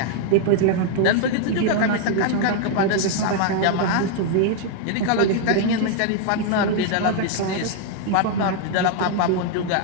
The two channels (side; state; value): both; different; correlation 0.00